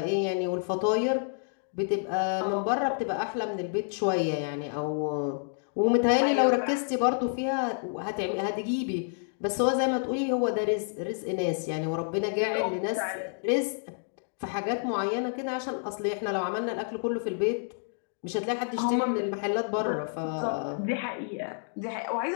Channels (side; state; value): right; silent; digital silence